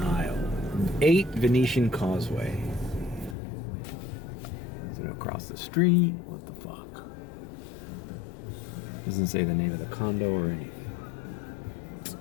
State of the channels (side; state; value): right; drops out; at 3.4 s